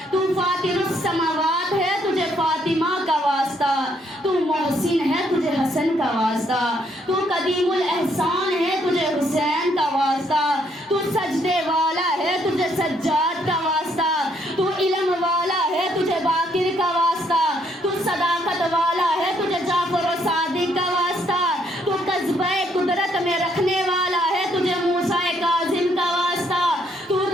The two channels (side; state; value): both; normal; correlation 0.70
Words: تو فاطر السماوات ہے تجھے فاطمہ کا واسطہ، تو محسن ہے تجھے حسن کا واسطہ، تو قدیم الاحسان ہے تجھے حسین کا واسطہ، تو سجدے والا ہے تجھے سجاد کا واسطہ، تو علم والا ہے تجھے باقر کا واسطہ، تو صداقت والا ہے تجھے جعفر و صادق کا واسطہ، تو قصبہ قدرت میں رکھنے والا ہے تجھے موسیٰ کاظم کا واسطہ، تو